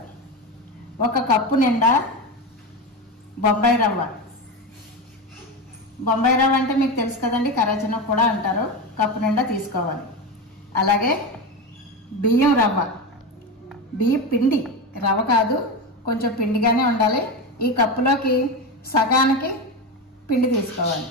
1 కప్పు నిండా బొంబాయి రవ్వ. బొంబాయి రవ్వ అంటే మీకు తెలుసు కదండి, కరాచనం కూడా అంటారు. కప్పు నిండా తీసుకోవాలి. అలాగే బియ్యం రవ్వ, బియ్యం పిండి, రవ్వ కాదు, కొంచెం పిండిగానే ఉండాలి. ఈ కప్పులోకి సగానికి పిండి తీసుకోవాలి.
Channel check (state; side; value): normal; both; correlation 0.19